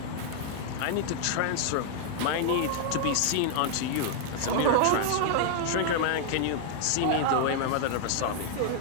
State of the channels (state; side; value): different; both; correlation 0.00